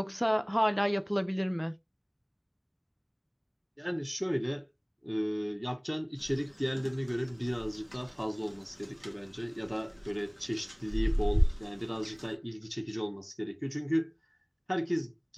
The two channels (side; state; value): both; identical; correlation 1.00